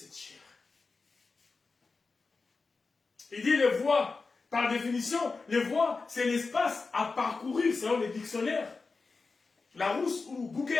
chair. Il dit les voies, par définition, les voies, c'est l'espace à parcourir selon les dictionnaires. Larousse ou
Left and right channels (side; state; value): right; quieter; 4.2 dB